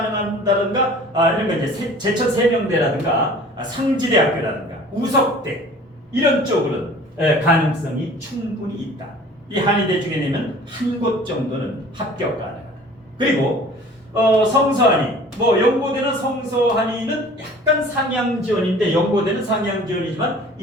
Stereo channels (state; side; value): normal; both; correlation 0.47